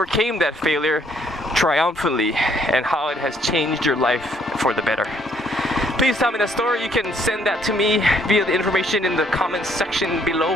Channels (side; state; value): both; normal; correlation 0.66